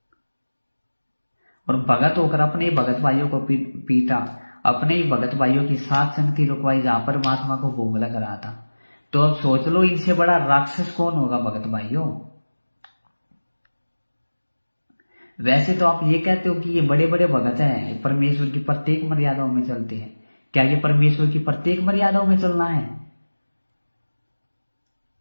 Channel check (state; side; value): inverted; both; correlation -1.00